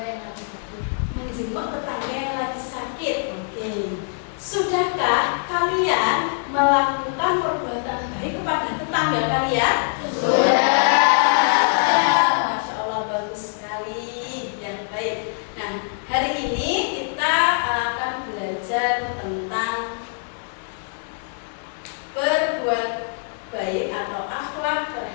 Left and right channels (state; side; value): silent; right; digital silence